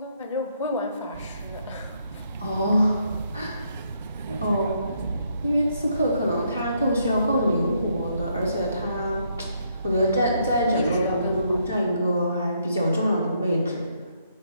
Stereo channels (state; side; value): inverted; both; correlation -0.73